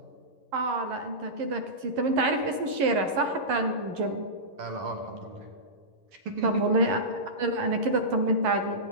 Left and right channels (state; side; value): late; left; 11 ms